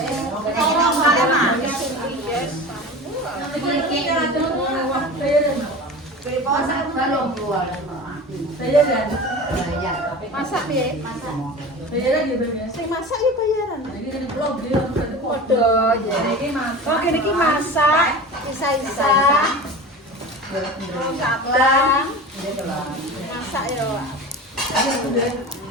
orang bayar mah Masak balong keluar. Bayar kan? Bayar. Masak piye? Masak. Bayar lagi bayar. Sing masak ya bayaran. Ini kan blog dia Padha ya. Ini masak. Oh kene iki masak, isa-isa. Kaplang. Masak ya.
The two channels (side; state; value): both; normal; correlation 0.33